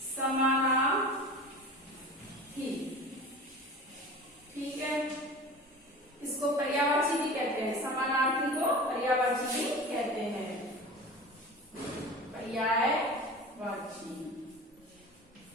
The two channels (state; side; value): normal; both; correlation 0.35